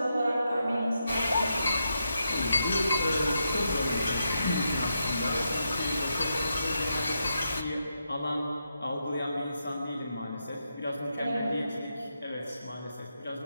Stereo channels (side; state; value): both; inverted; correlation -0.83